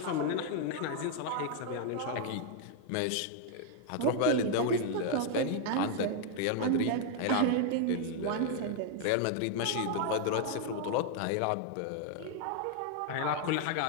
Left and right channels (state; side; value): different; both; correlation 0.00